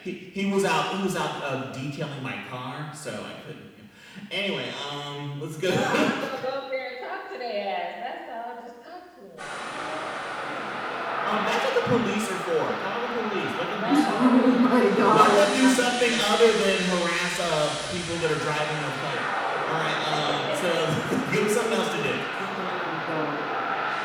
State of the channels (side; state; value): both; identical; correlation 1.00